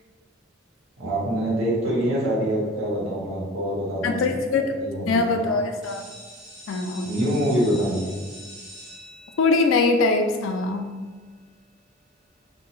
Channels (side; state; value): both; normal; correlation 0.33